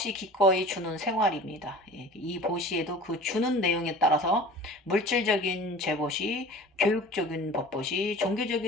기꺼이 주는 생활입니다. 예, 이 보시에도 그 주는 내용에 따라서 물질적인 재보시, 교육적인 법보시,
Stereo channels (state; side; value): normal; both; correlation 0.41